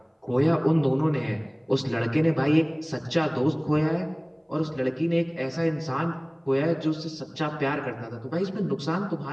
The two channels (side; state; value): both; identical; correlation 1.00